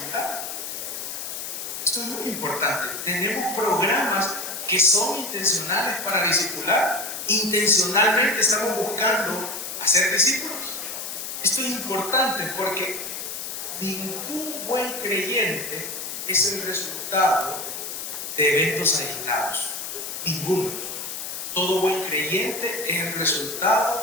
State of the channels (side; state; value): left; noise; hiss, 6 dB below the sound